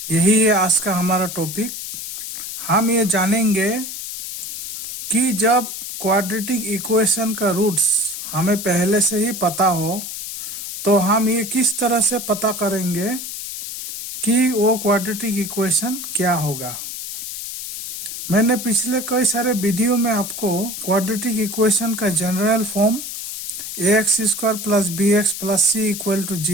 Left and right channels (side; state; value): left; noise; hiss, 7 dB below the sound